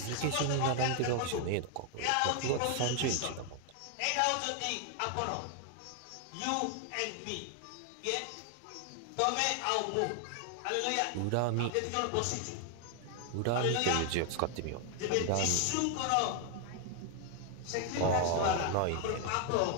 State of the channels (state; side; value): different; both; correlation 0.00